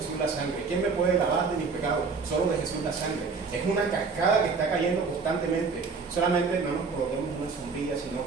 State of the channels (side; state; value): left; quieter; 4.8 dB